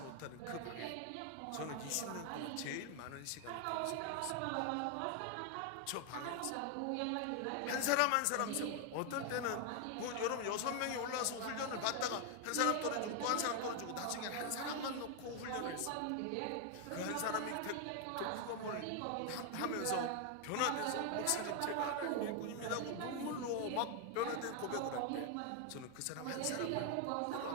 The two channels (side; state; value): both; different; correlation 0.00